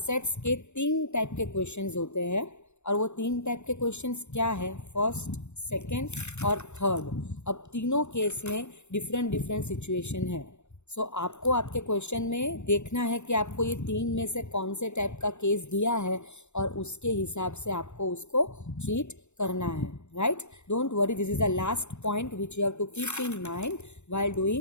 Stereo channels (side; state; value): right; late; 0.82 ms